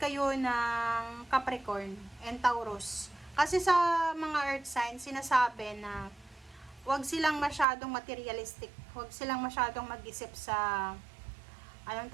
ng Capricorn and Taurus. Kasi sa mga earth signs, sinasabi na wag silang masyadong materialistic, wag silang masyadong mag-isip sa, anong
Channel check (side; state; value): left; drops out; at 7.7 s